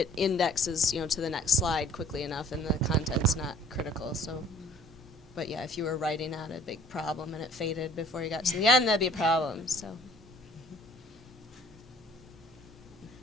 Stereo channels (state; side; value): normal; both; correlation 0.53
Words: indexes, to the next slide quickly enough, and the content's not critical, so. But yeah, if you were writing out a big problem and it faded before you got to the end, that'd be a problem, so. I